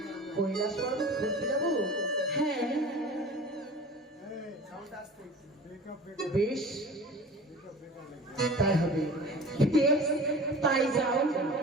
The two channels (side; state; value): both; normal; correlation 0.39